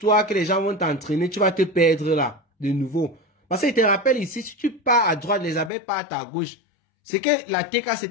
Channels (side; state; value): right; drops out; at 5.7 s